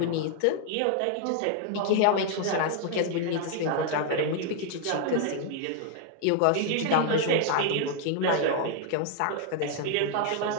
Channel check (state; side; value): different; both; correlation 0.00